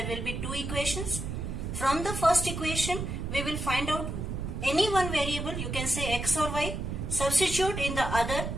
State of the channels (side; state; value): right; noise; rumble, 4 dB below the sound